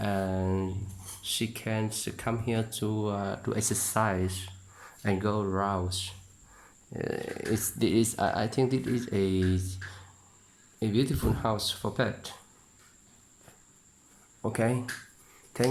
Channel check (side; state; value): both; identical; correlation 1.00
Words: she can come here to exercise and go around. I think it is a beautiful house for pet. Okay,